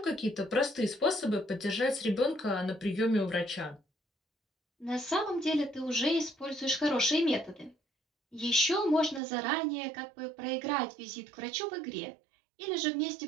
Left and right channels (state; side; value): drops out; left; at 9.2 s